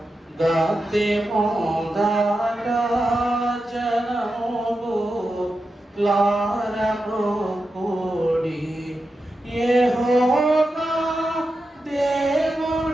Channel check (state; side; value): normal; both; correlation 0.90